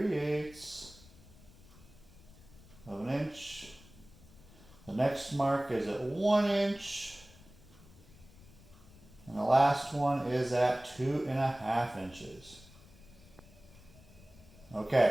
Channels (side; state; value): left; noise; rumble, 22 dB below the sound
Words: of an inch. The next mark is at 1 inch. And the last one is at 2.5 inches.